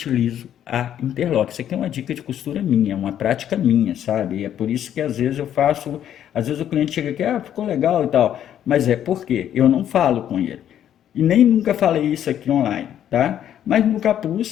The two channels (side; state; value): right; quieter; 10.4 dB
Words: a interlock. Isso aqui é uma dica de costura minha, uma prática minha, sabe? É por isso que às vezes eu faço, às vezes o cliente chega aqui, ficou legal e tal, mas é porque eu não falo com ele. E nem nunca falei isso aqui online, tá? Mas no